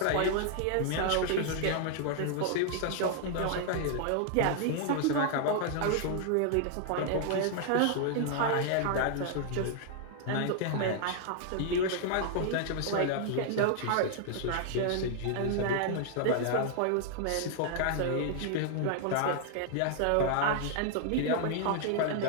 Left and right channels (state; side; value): different; both; correlation 0.00